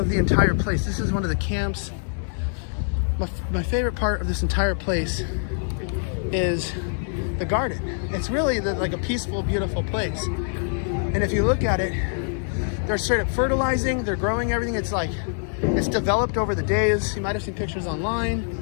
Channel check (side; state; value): right; silent; 62 dB below the other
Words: the entire place. This is one of the camps. My favorite part of this entire place is the garden. It's really like a peaceful, beautiful place. And if you look at it, they're straight up fertilizing, they're growing everything. It's like, it's developed over the days. You might have seen pictures online.